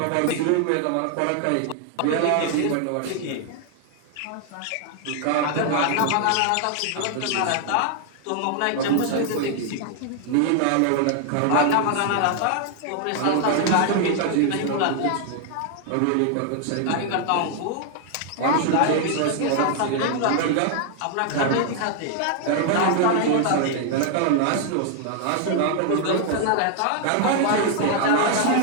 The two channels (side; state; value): both; different; correlation 0.00